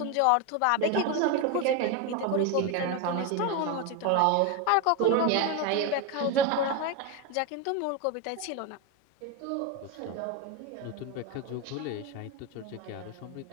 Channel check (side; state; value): both; different; correlation 0.03